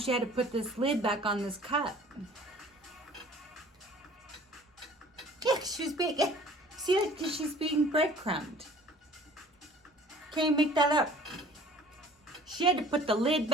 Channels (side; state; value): both; normal; correlation 0.49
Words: had to put this lid back on this cup. Yeah, she was being, see, like, she's being breadcrumbed. Can't even make that up. She had to put the lid